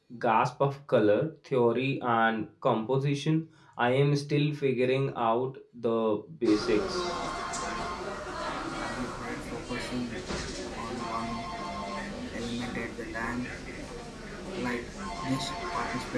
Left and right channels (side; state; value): both; identical; correlation 1.00